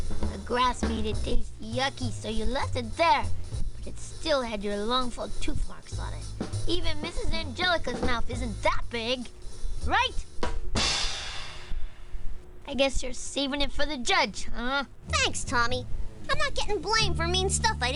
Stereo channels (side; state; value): both; identical; correlation 1.00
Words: grass made it taste yucky, so you left it there, but it still had your longful tooth marks on it. Even Mrs. Angelica's mouth isn't that big, right? I guess you're saving it for the judge, huh? Thanks, Tommy. I'm not getting blamed for mean stuff I